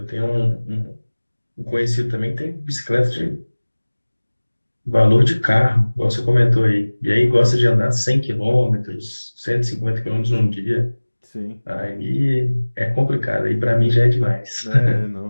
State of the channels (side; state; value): both; inverted; correlation -1.00